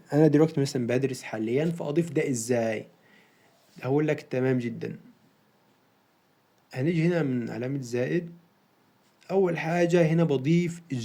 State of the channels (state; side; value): identical; both; correlation 1.00